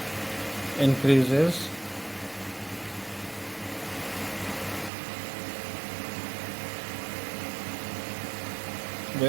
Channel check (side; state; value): left; drops out; at 4.9 s